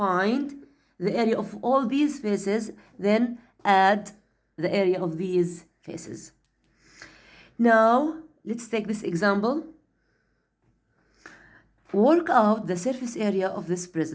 the area of all these faces, then add the area of these faces. Now, let's take this example. Work out the surface area of this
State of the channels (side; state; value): both; identical; correlation 1.00